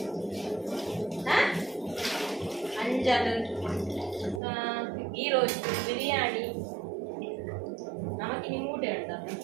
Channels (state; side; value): drops out; left; at 4.4 s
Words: anjal ghee roast biryani ನಮಗಿನಿ ಮೂಡೆ ಉಂಟ